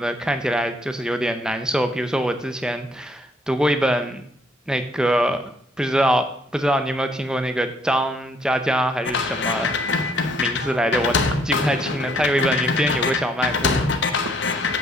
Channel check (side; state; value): both; normal; correlation 0.66